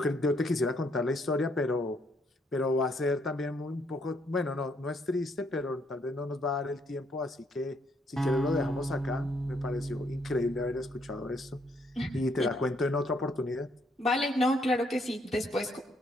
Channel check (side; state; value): both; normal; correlation 0.71